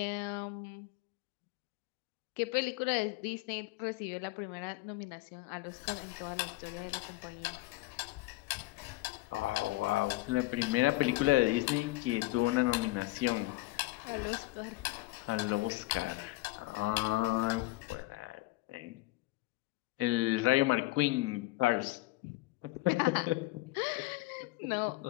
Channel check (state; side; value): quieter; right; 20.1 dB